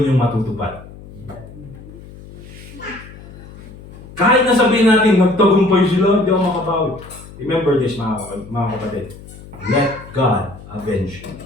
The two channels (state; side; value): noise; left; hum, 17 dB below the sound